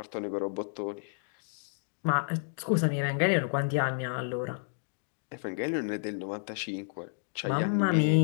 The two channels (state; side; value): silent; right; digital silence